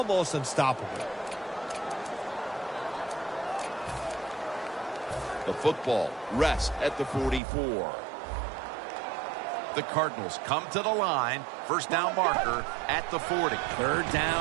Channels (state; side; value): drops out; left; at 7.4 s